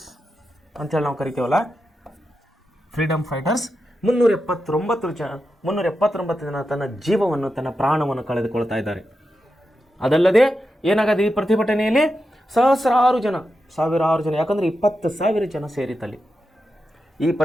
ಅಂತೇಳಿ ನಾವು ಕರಿತೀವಲ್ಲ, ಫ್ರೀಡಮ್ ಫೈಟರ್ಸ್ 379 ಜನ ತನ್ನ ಜೀವವನ್ನು, ತನ್ನ ಪ್ರಾಣವನ್ನು ಕಳೆದುಕೊಳ್ತಾ ಇದ್ದಾರೆ. ಅದಲ್ಲದೆ ಏನಾಗದೆ ಈ ಪ್ರತಿಭಟನೆಯಲ್ಲಿ ಸಹಸ್ರಾರು ಜನ, ಸಾವಿರಾರು ಜನ, ಯಾಕಂದ್ರೆ 20,000 ಜನ ಸೇರಿತಲ್ಲಿ. ಈ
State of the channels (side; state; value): both; normal; correlation 0.88